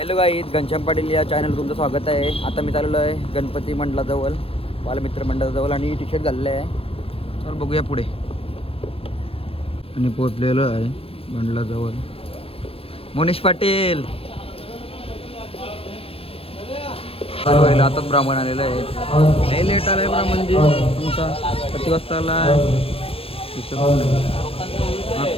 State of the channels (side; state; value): right; late; 0.27 ms